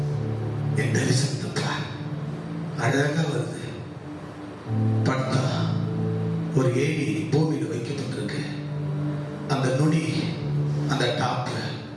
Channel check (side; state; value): both; identical; correlation 1.00